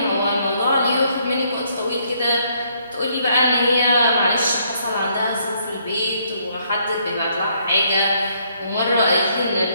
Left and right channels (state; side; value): inverted; both; correlation -0.69